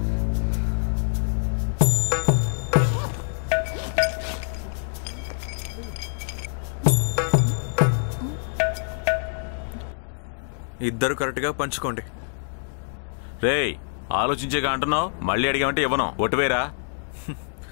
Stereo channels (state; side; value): silent; right; digital silence